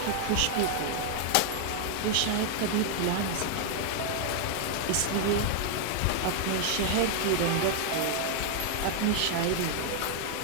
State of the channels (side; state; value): both; different; correlation 0.00